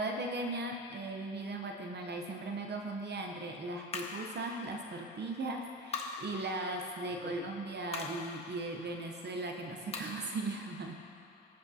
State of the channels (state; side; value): normal; both; correlation 0.25